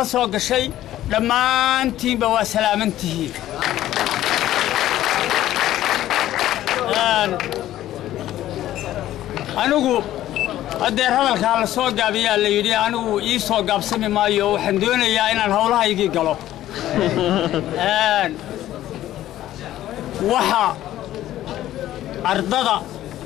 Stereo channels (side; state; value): right; quieter; 13.5 dB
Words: la soo gashay dhammaantiinba waa salaamantihiin anigu adeer hadalkaa la soo gaabiyaa la yidhi anigu ii soo gaabsami maayo waxaan doonayaa inaan howlahaygii galo waxa ardada